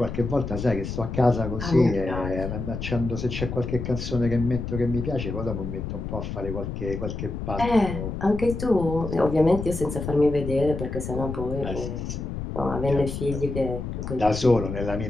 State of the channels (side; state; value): left; noise; rumble, 5 dB below the sound